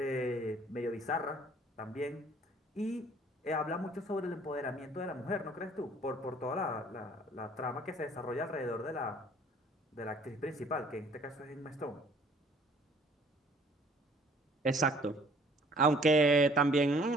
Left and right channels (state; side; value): normal; both; correlation 0.56